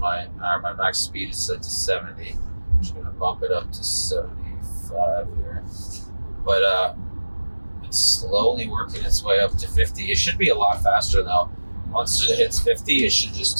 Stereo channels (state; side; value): inverted; both; correlation -1.00